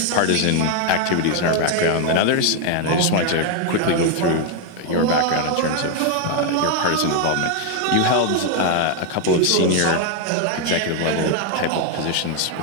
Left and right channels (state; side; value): different; both; correlation 0.01